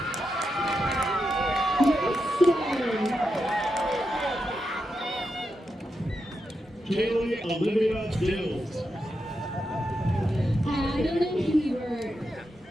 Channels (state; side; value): normal; both; correlation 0.86